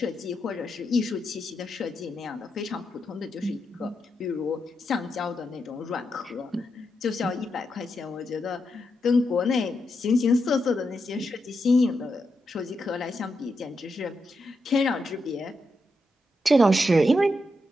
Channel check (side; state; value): both; normal; correlation 0.85